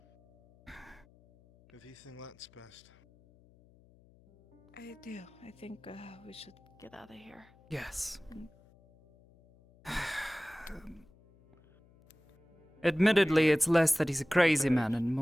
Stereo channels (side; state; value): left; noise; hum, 28 dB below the sound